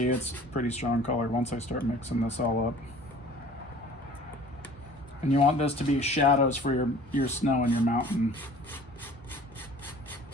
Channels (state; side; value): normal; both; correlation 0.48